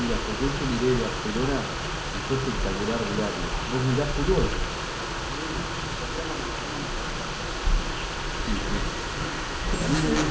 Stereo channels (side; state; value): both; identical; correlation 1.00